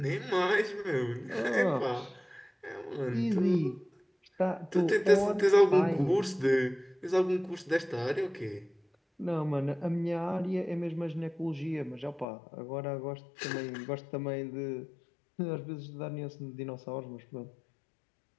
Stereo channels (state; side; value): drops out; right; at 12.2 s